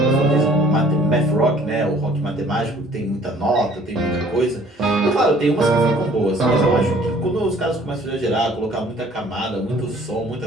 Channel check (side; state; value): both; normal; correlation 0.55